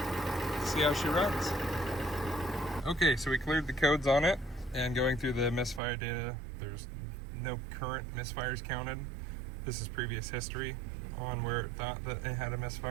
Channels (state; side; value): drops out; left; at 5.8 s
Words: see how she runs. Okay, so we cleared the codes on it, and going through the misfire data, there's no current misfires counted. This is previous history on where it thought that it had a